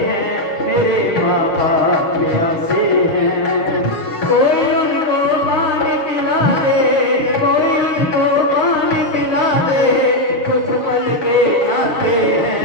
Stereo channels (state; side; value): late; right; 6.7 ms